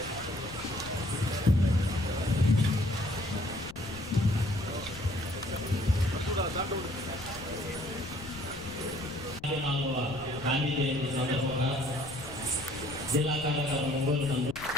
గాంధీ జయంతి సందర్భంగా జిల్లా కార్యాలయం ఒంగోలు నందు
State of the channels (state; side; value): noise; left; rumble, 15 dB below the sound